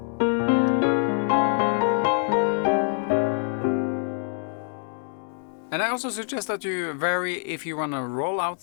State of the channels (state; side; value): silent; right; digital silence